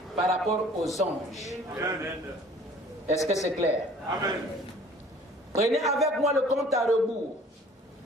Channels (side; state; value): both; normal; correlation 0.52